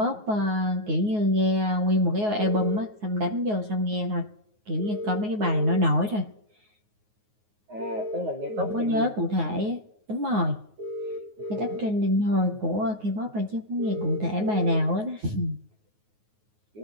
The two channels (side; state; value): left; late; 9.5 ms